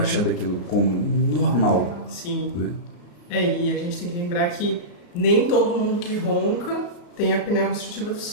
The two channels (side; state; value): right; late; 34 ms